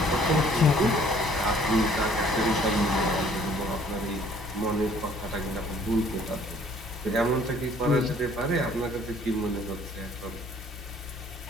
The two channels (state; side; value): normal; both; correlation 0.58